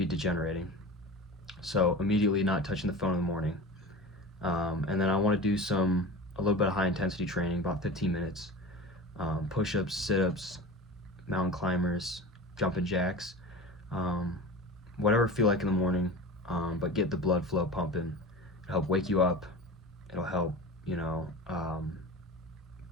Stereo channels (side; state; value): both; normal; correlation 0.33